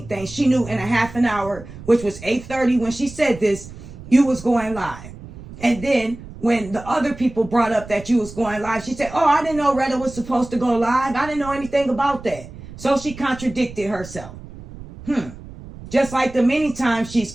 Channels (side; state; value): right; noise; rumble, 15 dB below the sound